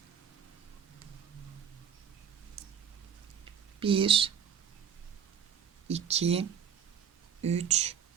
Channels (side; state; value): left; quieter; 7.8 dB